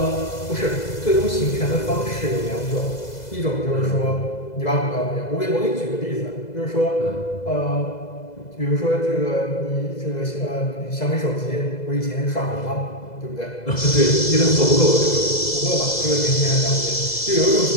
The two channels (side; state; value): right; late; 2.0 ms